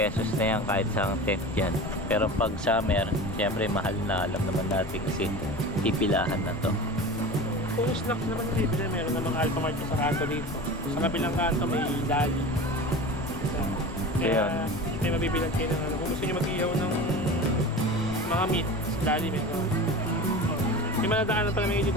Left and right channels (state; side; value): noise; left; rumble, 13 dB below the sound